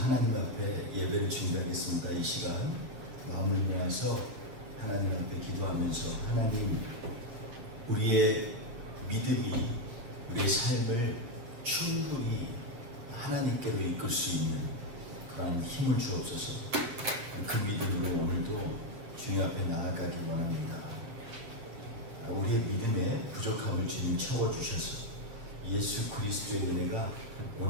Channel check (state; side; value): late; left; 8.3 ms